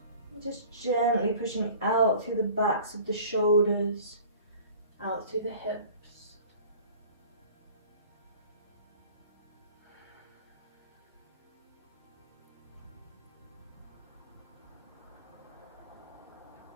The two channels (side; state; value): both; inverted; correlation -0.45